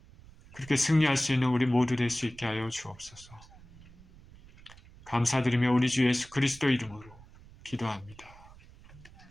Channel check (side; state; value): right; noise; rumble, 22 dB below the sound